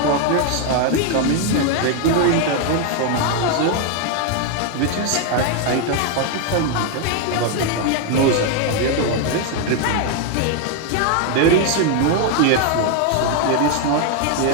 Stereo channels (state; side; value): different; both; correlation 0.01